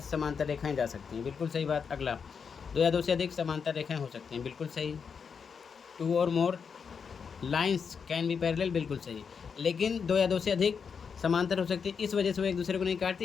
समांतर रेखाएं जा सकती हैं, बिल्कुल सही बात। अगला, दो या दो से अधिक समांतर रेखाएं हो सकती हैं, बिल्कुल सही। टू और मोर लाइंस कैन बी पैरेलल, बिल्कुल सही, लेकिन दो या दो से अधिक समांतर हो सकती है, इस वजह से वो एक दूसरे को नहीं काटती,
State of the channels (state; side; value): quieter; right; 6.2 dB